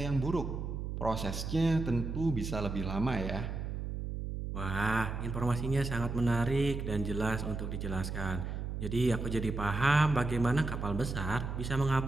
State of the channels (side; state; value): right; noise; hum, 4 dB below the sound